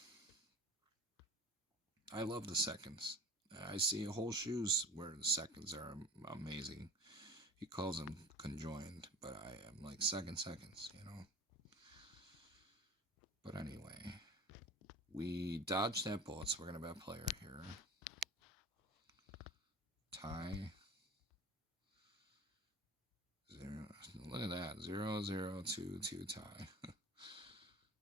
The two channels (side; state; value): both; normal; correlation 0.38